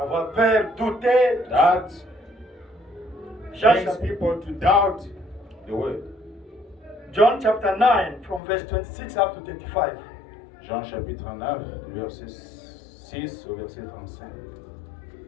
peur, douter. That John brings chapter, people to doubt the word. John chapter 9 from verse 26 up to 35. Jean chapitre 9, verset 6 au verset 35.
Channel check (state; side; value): drops out; right; at 8.4 s